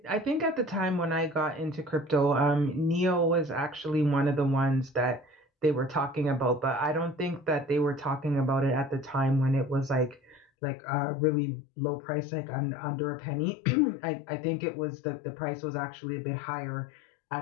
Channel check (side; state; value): right; drops out; at 10.5 s